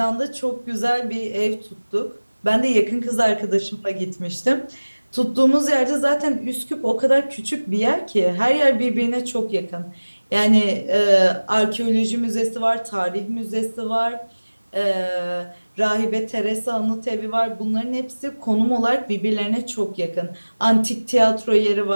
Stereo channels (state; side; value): inverted; both; correlation -1.00